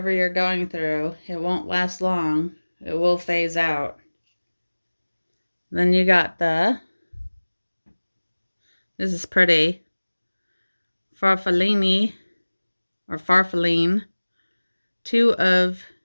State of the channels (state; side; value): inverted; both; correlation -1.00